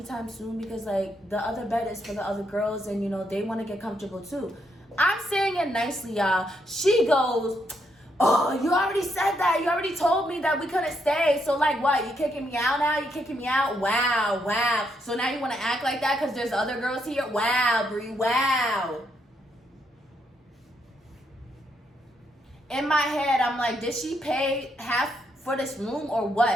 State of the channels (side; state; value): both; normal; correlation 0.77